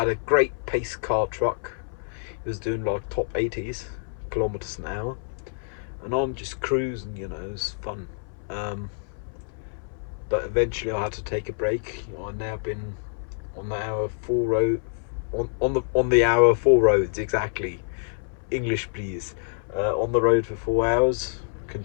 a great pace car truck. It was doing like top 80s kilometers an hour, and I'm just cruising, you know. It was fun. But eventually I had to take a break. I've now been on the hour 4 road, on the hour 4 roads, exactly. English please. On the road for 4 hours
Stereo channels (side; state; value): right; silent; 61 dB below the other